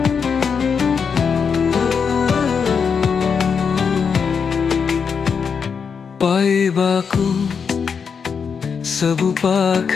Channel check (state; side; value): quieter; right; 6.2 dB